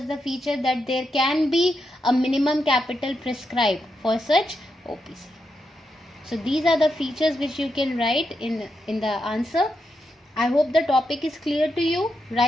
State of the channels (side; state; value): both; normal; correlation 0.84